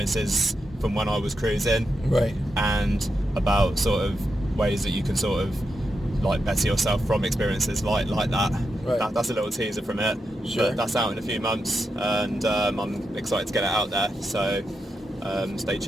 from when I was cruising. Right. And about sort of ways that you can sort of like better yourself from experiences like that. Right. That's a little teaser from it. Sure. But that's out in a few months, and I'm excited to get it out there. So stay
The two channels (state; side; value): normal; both; correlation 0.86